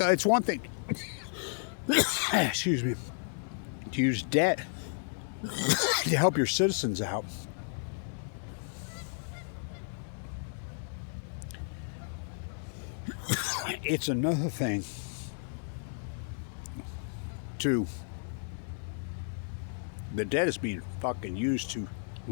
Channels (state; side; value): silent; right; digital silence